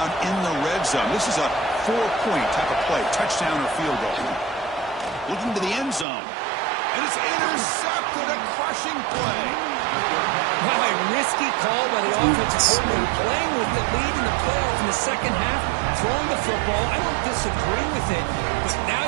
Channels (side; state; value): left; drops out; at 6.1 s